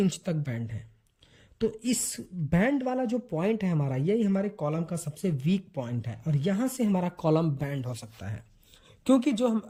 तक बैंड है। तो इस बैंड वाला जो पॉइंट है हमारा, यही हमारे कॉलम का सबसे वीक पॉइंट है और यहां से हमारा कॉलम बैंड हो सकता है। क्योंकि जो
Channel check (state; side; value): identical; both; correlation 1.00